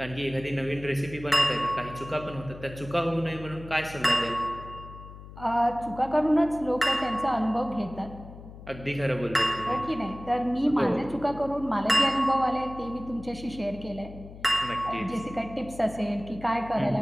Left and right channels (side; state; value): left; noise; hum, 15 dB below the sound